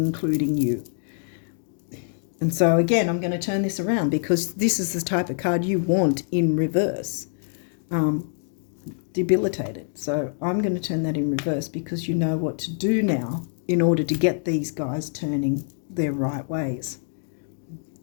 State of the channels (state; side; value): silent; right; digital silence